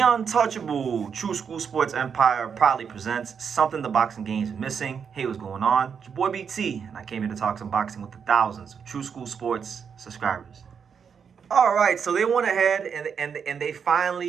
True School Sports Empire proudly presents Something the Boxing Game is Missing. Hey, what's going on? It's your boy BT, and I came here to talk some boxing with the thousands of True School Sports subscribers. All right, so they went ahead and they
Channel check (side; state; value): left; quieter; 6.8 dB